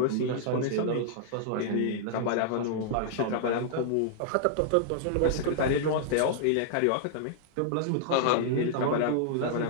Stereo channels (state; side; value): different; both; correlation -0.01